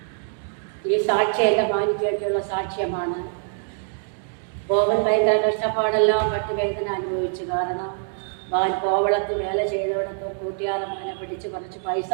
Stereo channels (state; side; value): silent; left; 62 dB below the other